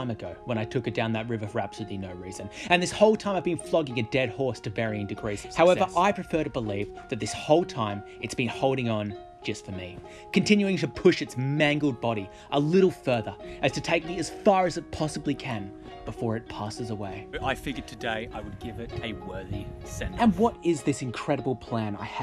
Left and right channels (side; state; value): both; identical; correlation 1.00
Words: ago when I took it down that river for absolutely no reason. And this whole time I've been flogging a dead horse to varying degrees of success. However, I prefer to believe that this whole time it's been holding on just for me, continuing to push its mangled body a little further as to take me as far as it possibly can before it passes away. I figured today I would give it a worthy send-off. And what is this incredible plan I